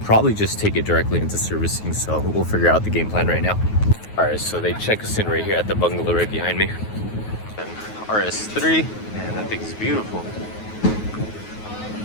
probably just take it directly into servicing. So we'll figure out the game plan right now. Alright, so they check us in right here at the bungalow right behind me. And RS3, man, that thing is beautiful.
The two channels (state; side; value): late; right; 9.4 ms